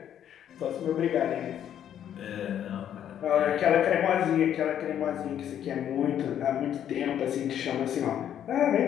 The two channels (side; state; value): right; quieter; 10.0 dB